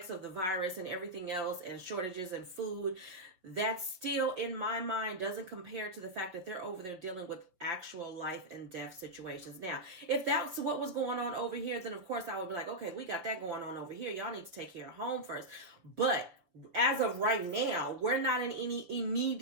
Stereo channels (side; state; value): left; late; 5.9 ms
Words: of the virus and everything else, and shortages in food, that still, in my mind, doesn't compare to the fact that they're over there dealing with actual life and death situations. Now, if that's what was going on over here, then of course I would be like, okay, we got that going on over here. Y'all need to take care of home first. But as of right now, we're not in any